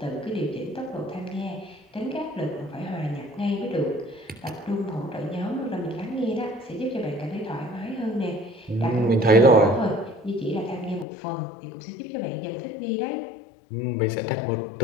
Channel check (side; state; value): right; drops out; at 11.1 s